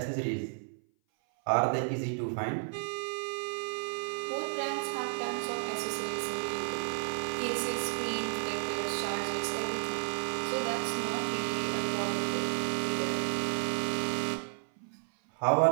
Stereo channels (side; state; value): left; silent; 56 dB below the other